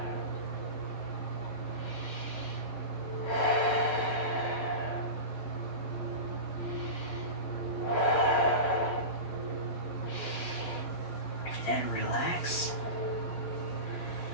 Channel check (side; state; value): right; late; 11 ms